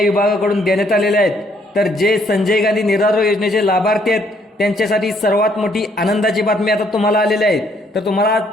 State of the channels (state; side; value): normal; both; correlation 0.67